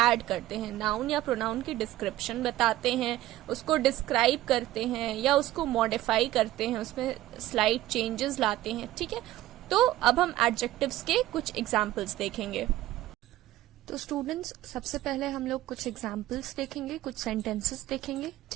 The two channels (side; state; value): left; quieter; 15.4 dB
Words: add करते हैं। noun या pronoun की description बताते हैं, उसको describe करते हैं या उसको modify करते हैं, उसमें slight changes लाते हैं। ठीक है, तो अब हम adjectives के कुछ examples देखेंगे। तो स्टूडेंट्स, सबसे पहले हम लोग कुछ examples देखेंगे, कुछ sentences देखेंगे।